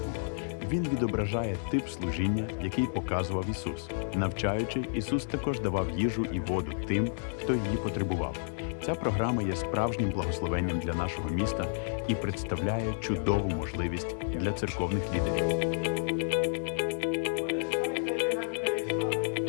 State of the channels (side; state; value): right; silent; 57 dB below the other